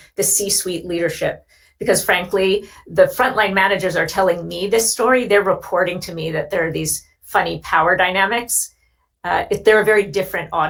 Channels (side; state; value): both; identical; correlation 1.00